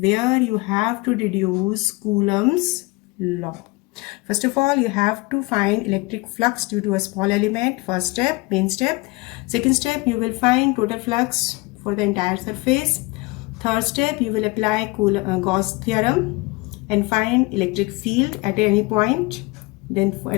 you have to deduce Coulomb's law. First of all, you have to find electric flux due to a small element. First step, main step. Second step, you will find total flux for the entire surface. Third step, you will apply Gauss theorem and find electric field at any point. Then for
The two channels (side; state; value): right; quieter; 24.7 dB